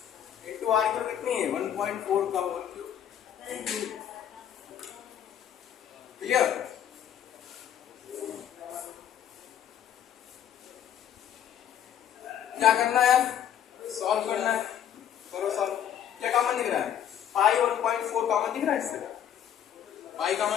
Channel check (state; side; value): quieter; right; 9.8 dB